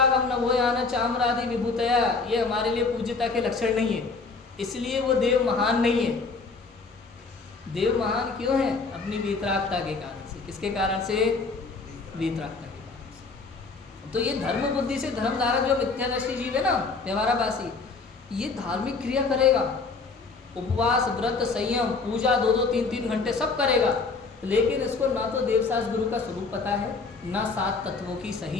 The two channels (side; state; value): right; quieter; 4.2 dB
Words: नभोयान चामरादि विभूतया ये हमारे लिए पूज्यता के लक्षण नहीं है, इसलिए वो देव महान नहीं है। देव महान क्यों है, अपनी वीतरागता के कारण से। किसके कारण से, वीतरागता के कारण से। तो ये धर्म बुद्धि से धर्मधारक जो मिथ्यादर्शी जीव है ना, व्यवहाराभासी, ये धार्मिक क्रिया करेगा, उपवास व्रत संयम पूजा 2-2 3-3 घंटे सब करेगा, लेकिन इसको ना तो देवशास्त्र गुरु का स्वरूप पता है, ना 7 तत्वों की